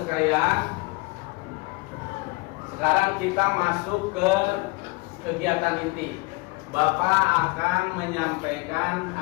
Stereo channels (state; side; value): quieter; right; 25.8 dB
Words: sekalian, sekarang kita masuk ke kegiatan inti. Bapak akan menyampaikan